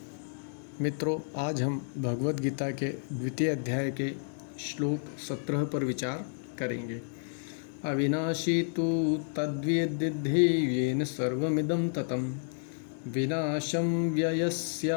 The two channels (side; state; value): right; silent; digital silence